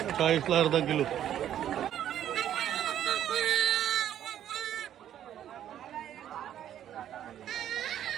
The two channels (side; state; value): left; quieter; 10.9 dB